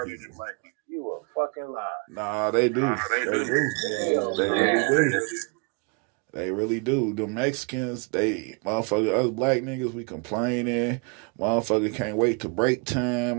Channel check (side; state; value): left; quieter; 34.5 dB